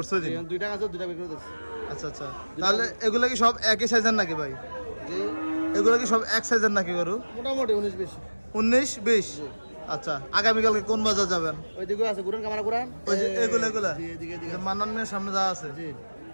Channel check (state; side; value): inverted; both; correlation -1.00